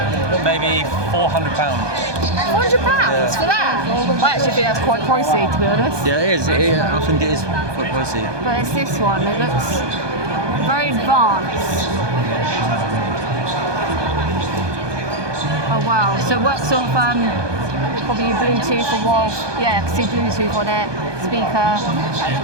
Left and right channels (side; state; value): left; late; 1.2 ms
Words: Maybe £400. £400 for that? I actually think that's quite pricey, to be honest. Yeah, it is. I think it is quite pricey. But it's this one. It looks very advanced. Oh wow! So it works off probably Bluetooth or wall. Yeah, I can see Bluetooth on it. Speaker.